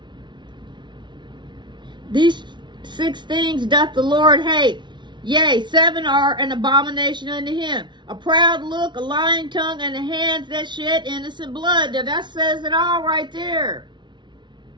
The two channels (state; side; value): late; left; 0.23 ms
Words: These 6 things doth the Lord hate. Yea, 7 are an abomination unto him. A proud look, a lying tongue, and the hands that shed innocent blood. Now that says it all right there.